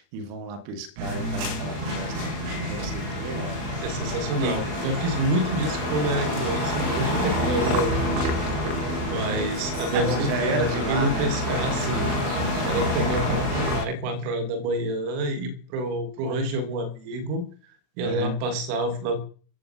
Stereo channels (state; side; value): late; left; 40 ms